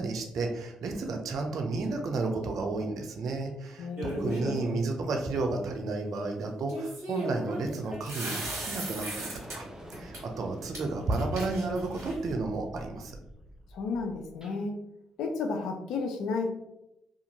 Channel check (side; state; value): both; normal; correlation 0.74